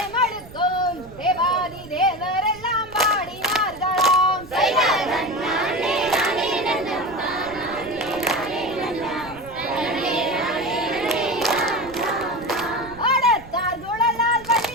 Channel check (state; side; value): noise; right; rumble, 19 dB below the sound